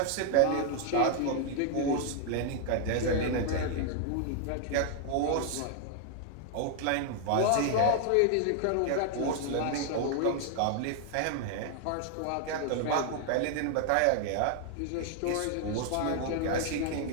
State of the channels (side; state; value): both; different; correlation 0.00